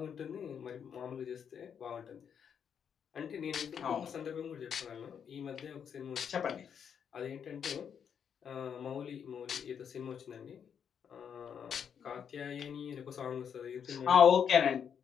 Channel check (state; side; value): quieter; right; 7.7 dB